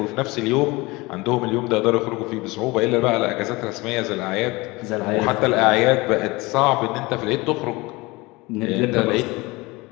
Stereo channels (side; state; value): right; quieter; 23.1 dB